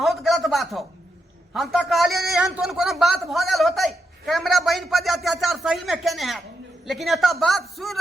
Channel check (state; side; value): normal; both; correlation 0.83